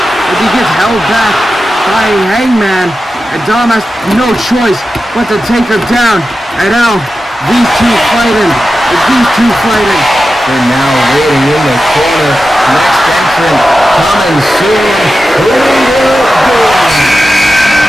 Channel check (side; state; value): both; normal; correlation 0.92